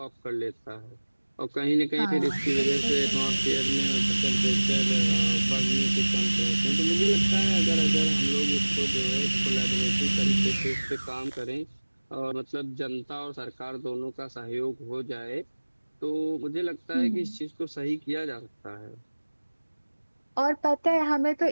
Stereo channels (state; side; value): inverted; both; correlation -1.00